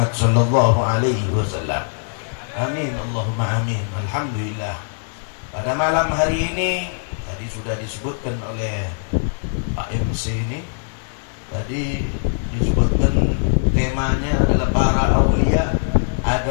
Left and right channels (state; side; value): silent; right; 65 dB below the other